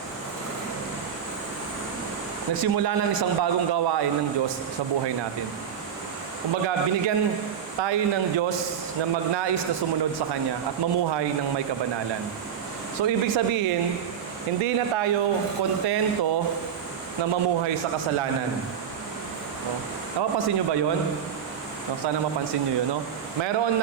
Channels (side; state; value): left; quieter; 8.2 dB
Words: nagsimula ng isang bagong gawain ng Diyos sa buhay natin. Kumbaga, binigyan tayo ng Diyos na magnais na sumunod sa Kanya at mamuhay ng may kabanalan. So, ibig sabihin, hindi na tayo kontento na mamuhay sa kasalanan. No? Napapansin nyo ba yun? No, sana mapansin nyo yun. No? Mayroon